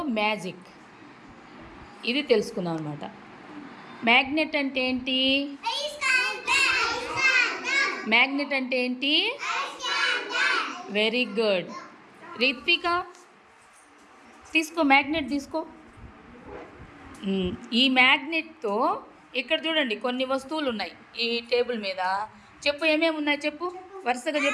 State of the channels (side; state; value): both; identical; correlation 1.00